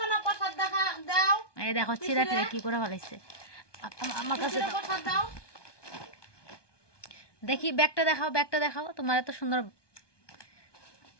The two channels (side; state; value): right; late; 1.2 ms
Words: না? প্রসাদ দেখা দাও। এই দেখো চিরা টিরা কি করে ফেলাইছে আমার কাছে। দাও। প্রসাদ দাও। দেখি ব্যাগটা দেখাও, ব্যাগটা দেখাও, তোমার এত সুন্দর।